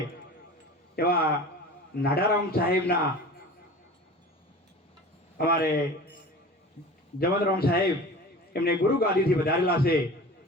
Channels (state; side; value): normal; both; correlation 0.38